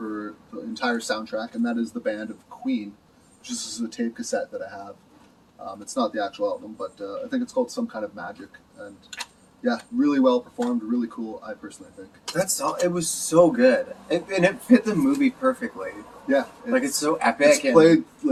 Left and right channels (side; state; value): both; identical; correlation 1.00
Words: the entire soundtrack, and that is the band of Queen, which is a tape cassette that I have. It's not the actual album, but I think it's called Some Kind of Magic, and yeah, really well performed, really cool, I personally think. It was so good, and it fit the movie perfectly. Yeah, it's so epic. It's played,